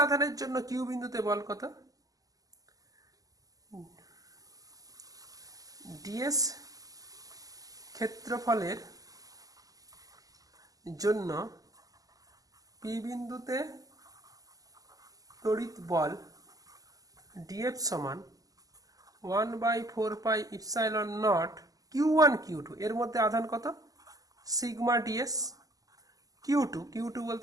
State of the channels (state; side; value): late; left; 0.17 ms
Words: আধানের জন্য কিউ বিন্দুতে বল কত, ডিএস ক্ষেত্রফলের জন্য পি বিন্দুতে তড়িৎ বল ডিএফ সমান 1/4 ইপসাইলন নট Q1 Q2, এর মধ্যে আধান কত, সিগমা ডিএস Q2